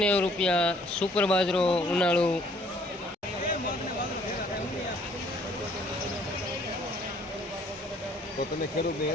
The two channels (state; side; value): normal; both; correlation 0.61